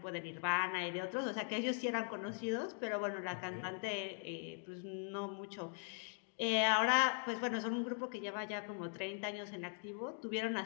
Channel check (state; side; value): silent; right; 51 dB below the other